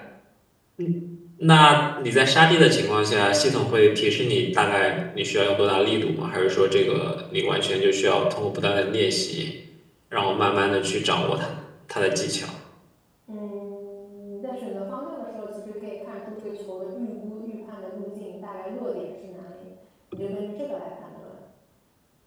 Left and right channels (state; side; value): identical; both; correlation 1.00